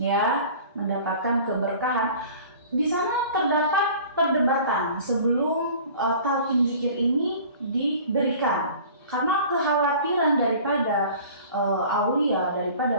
mendapatkan keberkahan. Di sana terdapat perdebatan sebelum talqin zikir ini diberikan, karena kekhawatiran daripada aulia,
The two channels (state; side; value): inverted; both; correlation -0.44